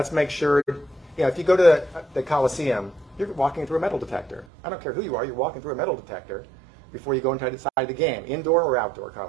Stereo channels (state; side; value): drops out; left; at 4.5 s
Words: make sure, if you go to the Coliseum, you're walking through a metal detector. I don't care who you are, you're walking through a metal detector before you go inside the game, indoor or outdoor